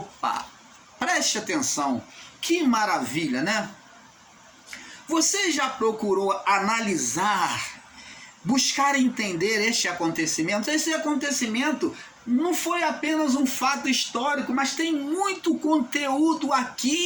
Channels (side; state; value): both; identical; correlation 1.00